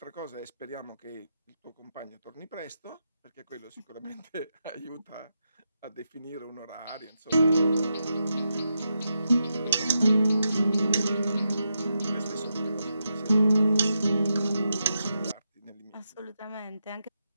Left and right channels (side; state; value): both; inverted; correlation -0.84